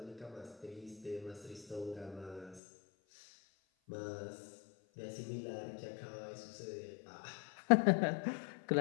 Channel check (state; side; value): drops out; right; at 2.6 s